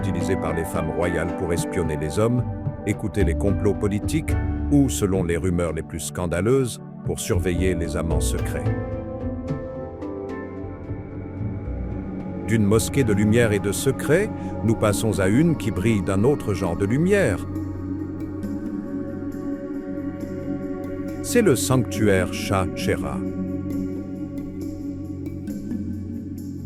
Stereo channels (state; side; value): identical; both; correlation 1.00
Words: par les femmes royales pour espionner les hommes, écouter les complots politiques ou, selon les rumeurs les plus scandaleuses, pour surveiller les amants secrets. D'une mosquée de lumière et de secret, nous passons à une qui brille d'un autre genre de lumière. C'est le sanctuaire Shah Cheragh.